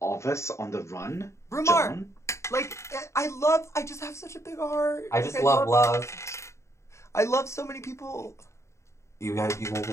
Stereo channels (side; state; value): right; late; 0.14 ms